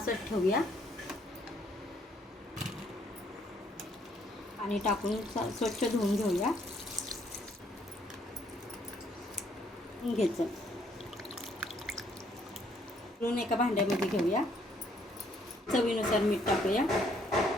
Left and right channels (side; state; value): both; normal; correlation 0.67